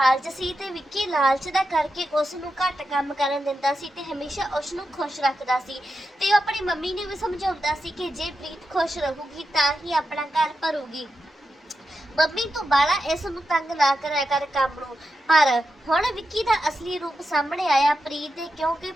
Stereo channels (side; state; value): both; normal; correlation 0.88